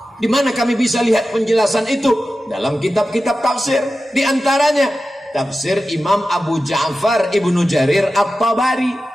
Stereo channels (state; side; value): normal; both; correlation 0.93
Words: Di mana kami bisa lihat penjelasan itu? Dalam kitab-kitab tafsir. Di antaranya tafsir Imam Abu Ja'far Ibnu Jarir